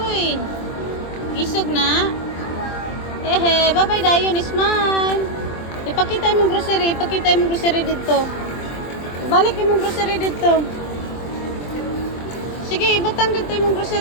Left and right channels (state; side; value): late; right; 23 ms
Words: uy. Isog na. Ehe, bye-bye dayon, smile. Ipakita imong grocery, ipakita imong grocery dito. Balik imong grocery dito. Sige, ibutang dito imong